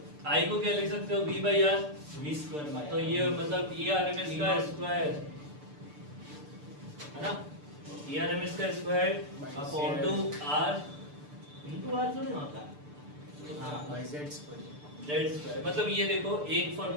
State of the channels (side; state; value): left; late; 6.8 ms